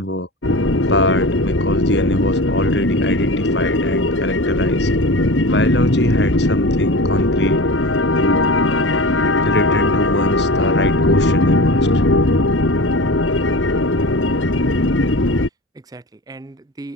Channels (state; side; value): normal; both; correlation 0.32